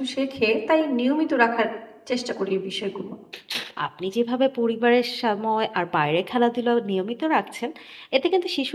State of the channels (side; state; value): both; identical; correlation 1.00